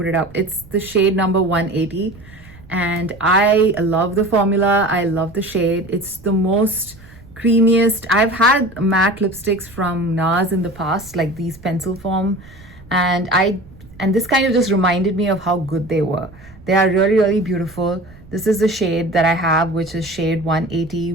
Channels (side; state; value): right; noise; rumble, 21 dB below the sound